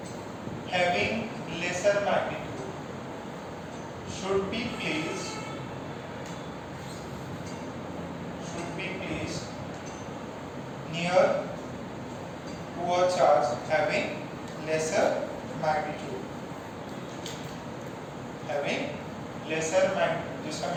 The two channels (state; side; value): identical; both; correlation 1.00